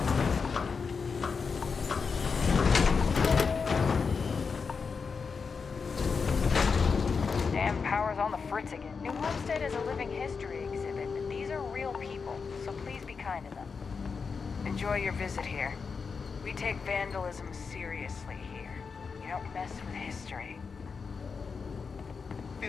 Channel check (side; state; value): right; quieter; 5.3 dB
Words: Damn power's on the fritz again. New Homestead is a living history exhibit, but these are real people, so please be kind to them. Enjoy your visit here. We take vandalism seriously here. You don't mess with history.